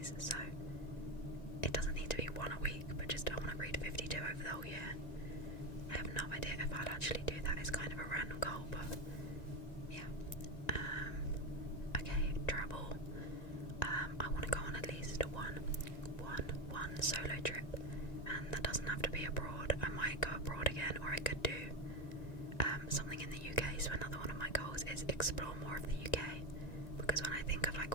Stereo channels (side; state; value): right; late; 1.9 ms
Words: so it doesn't need to be one a week, but just I want to read 52 over the whole year. I have no idea if I'll actually do that. It's kind of a random goal, but yeah. Okay, travel. I want to go on at least one solo trip, and that doesn't have to be abroad. I might go abroad again, or I could do something in the UK. So another one of my goals is explore more of the UK, because when I think of like